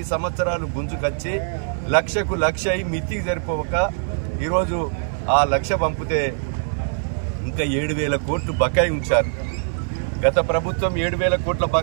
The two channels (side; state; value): left; silent; digital silence